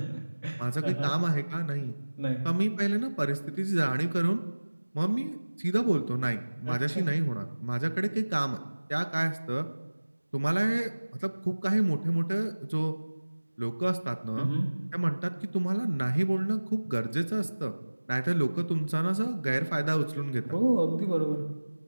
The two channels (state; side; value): inverted; both; correlation -1.00